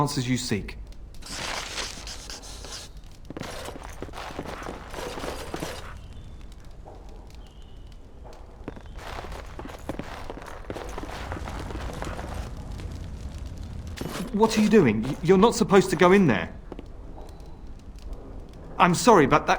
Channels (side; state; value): both; identical; correlation 1.00